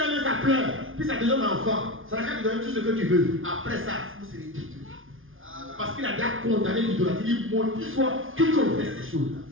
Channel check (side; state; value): left; late; 0.59 ms